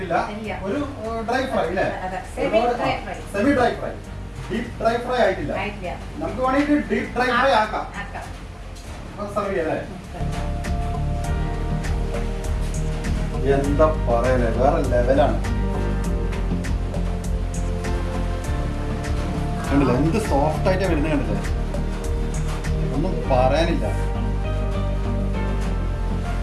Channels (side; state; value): both; identical; correlation 1.00